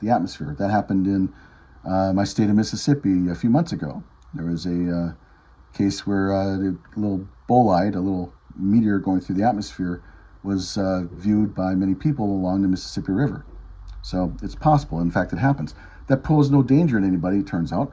the atmosphere. That happened in my state of Mississippi a few months ago. There was a case where a little bolide, a little meteor going through the atmosphere, was viewed by many people along the Mississippi River. So it's possible. In fact, it happens. That posed no danger in anybody, it turns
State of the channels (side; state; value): both; identical; correlation 1.00